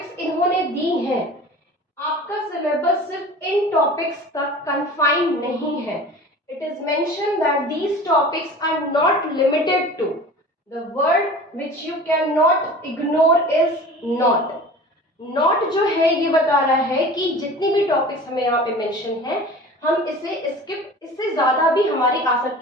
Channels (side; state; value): both; normal; correlation 0.40